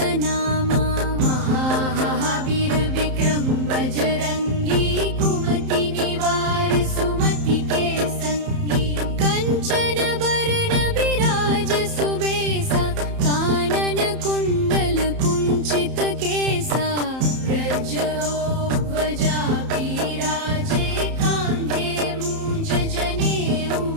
नामा। महावीर विक्रम बजरंगी, कुमति निवार सुमति के संगी। कंचन बरन बिराज सुबेसा, कानन कुंडल कुंचित केसा। व्रजध्वजा बिराजे, कांधे मूंज जनेऊ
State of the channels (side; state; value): left; late; 31 ms